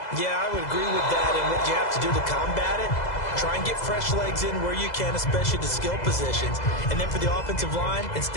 Yeah, I would agree with that, and what you have to do to combat it, try and get fresh legs in where you can, especially the skill positions. And then for the offensive line,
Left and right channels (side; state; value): right; late; 2.0 ms